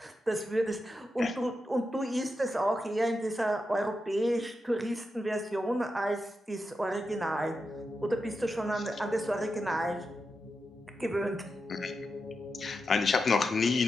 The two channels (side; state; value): both; normal; correlation 0.88